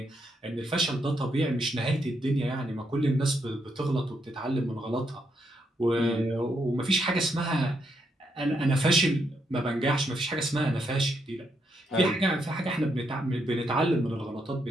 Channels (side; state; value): both; normal; correlation 0.78